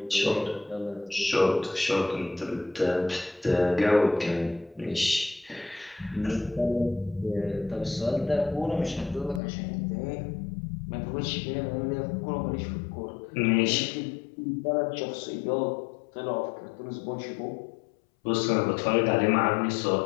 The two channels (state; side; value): drops out; right; at 9.4 s